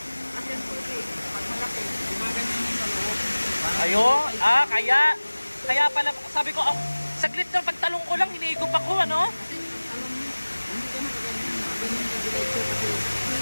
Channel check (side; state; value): both; inverted; correlation -1.00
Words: Yan po eh, pag malaki, gumaganyan yung dalawang. Ayun, kaya pala, sabi ko, saglit na pagtalong ko lang, hinihigop ako, ano? Kasi alam mo, hindi ka magaganyan ka diretso kasi